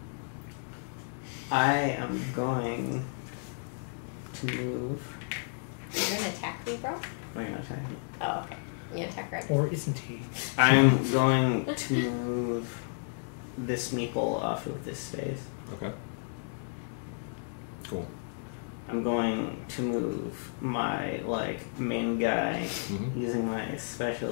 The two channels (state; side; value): silent; right; digital silence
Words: I am going to move. You're going to attack me, bro? Am I gonna attack you? Oh, okay. You gonna attack Greg? Or isn't he? I am going to move this meeple off of this space. Okay. Cool. I'm going to move my main guy Mhm. using my special